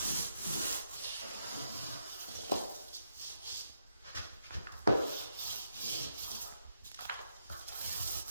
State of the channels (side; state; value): both; inverted; correlation -0.80